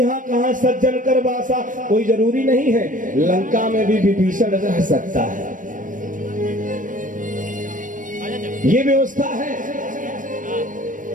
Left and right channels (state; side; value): late; left; 0.38 ms